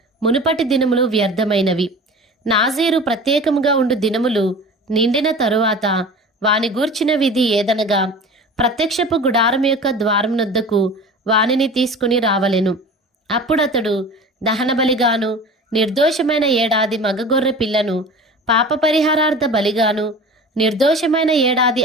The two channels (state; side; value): normal; both; correlation 0.38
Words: మునుపటి దినములు వ్యర్థమైనవి. నాజీరు ప్రత్యేకముగా ఉండు దినములు నిండిన తరువాత వాని గూర్చిన విధి ఏదనగా, ప్రత్యక్షపు గుడారం యొక్క ద్వారమునొద్దకు వానిని తీసుకుని రావలెను. అప్పుడతడు దహనబలిగాను నిర్దోషమైన 7 ఏడాది మగగొర్రె పిల్లను, పాప పరిహారార్థ బలిగాను నిర్దోషమైన 7 ఏడాది